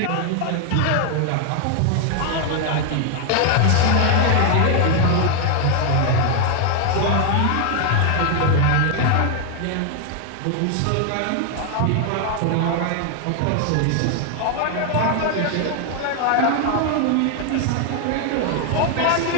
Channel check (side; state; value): both; different; correlation 0.00